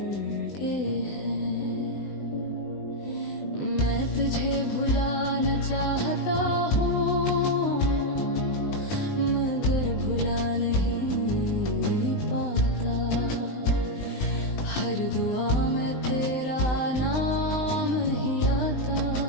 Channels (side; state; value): right; late; 20 ms